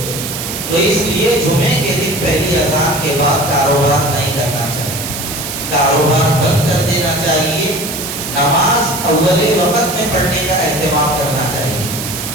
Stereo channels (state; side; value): noise; right; hiss, 6 dB below the sound